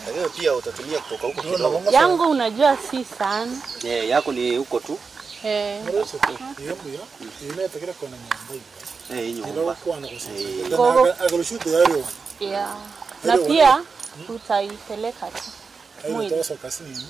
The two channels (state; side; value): quieter; left; 4.9 dB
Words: Leo pia utatumia kutoka huko kidogo. yangu, unajua si sana. Yako ni huko tu. Yeah. Na pia utaipeleka tu. Mwili.